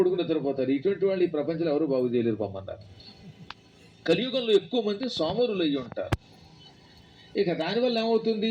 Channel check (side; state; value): both; identical; correlation 1.00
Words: నిద్రపోతారు. ఇటువంటి వాళ్ళు ఈ ప్రపంచంలో ఎవరు బాగు చేయలేరు పొమ్మన్నారు. కలియుగంలో ఎక్కువ మంది సోమరులు అయ్యి ఉంటారు. ఇక దానివల్ల